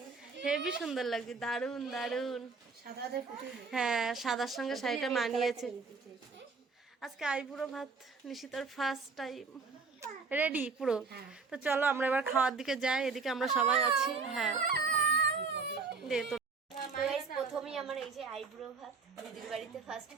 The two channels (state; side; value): quieter; left; 4.6 dB